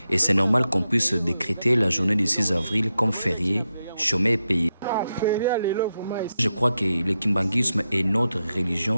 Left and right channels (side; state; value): both; inverted; correlation -0.87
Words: et c'est normal qu'on puisse décréter la journée du 6 avril comme férié, chômé et payé. Je crois que le kimbanguisme est notre